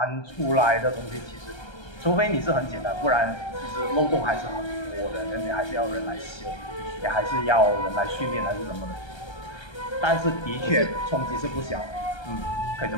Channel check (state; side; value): late; right; 1.3 ms